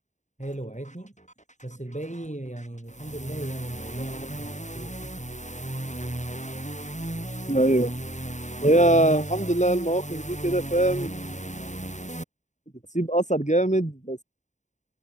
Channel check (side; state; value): right; late; 0.35 ms